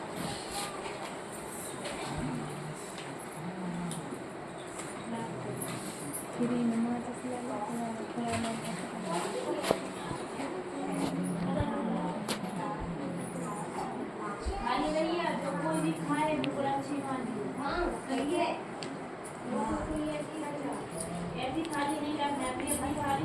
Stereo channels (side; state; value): both; identical; correlation 1.00